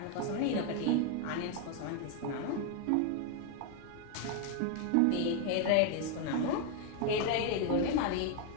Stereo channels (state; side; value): different; both; correlation 0.01